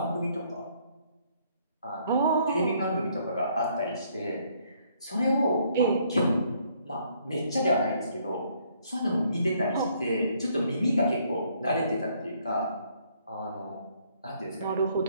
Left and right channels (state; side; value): inverted; both; correlation -0.67